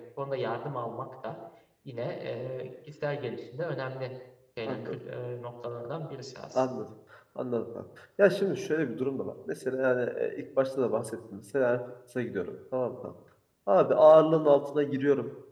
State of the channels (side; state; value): both; identical; correlation 1.00